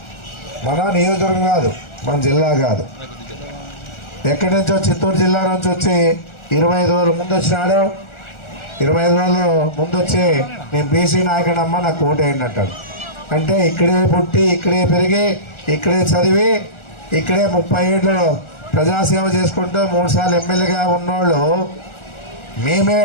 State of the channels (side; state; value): right; late; 1.4 ms